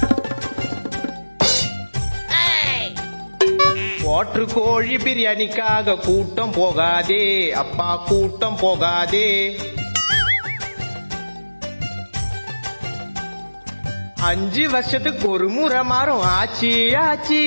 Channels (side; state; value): both; inverted; correlation -1.00